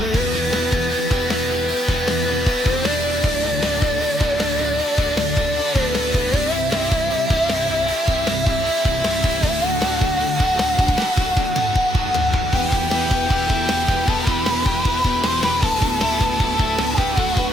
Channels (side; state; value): both; normal; correlation 0.75